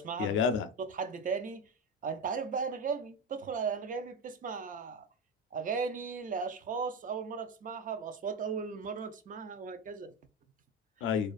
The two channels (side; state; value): both; normal; correlation 0.16